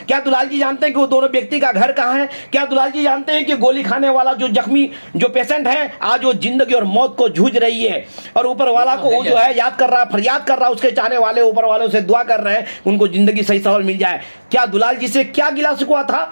क्या दुलाल जी जानते हैं कि वो दोनों व्यक्ति का घर कहाँ है? क्या दुलाल जी जानते हैं कि गोली खाने वाला जो जख्मी जो पेशेंट है, आज वो जिंदगी और मौत को जूझ रही है, और ऊपर वाला को वो जो है याद कर रहा, फरियाद कर रहा, उसके चाहने वाले ऊपर वालों से दुआ कर रहे हैं उनको जिंदगी सही सवाल मिल जाए। क्या दुलाल जी से क्या गिला शिकवा था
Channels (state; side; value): inverted; both; correlation -1.00